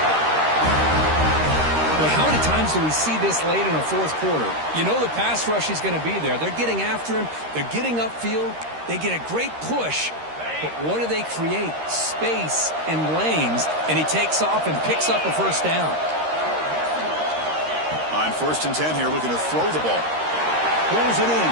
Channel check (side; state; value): left; late; 13 ms